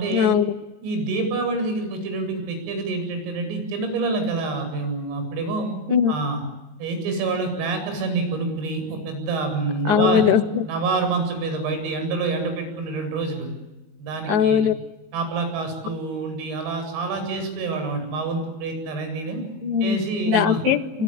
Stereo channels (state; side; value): late; left; 19 ms